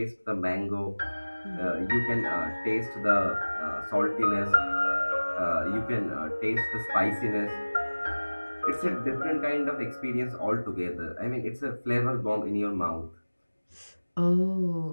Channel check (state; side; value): inverted; both; correlation -1.00